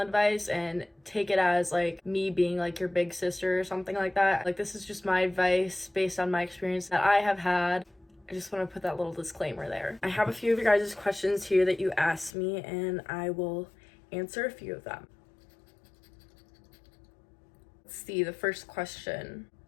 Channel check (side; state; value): right; drops out; at 12.3 s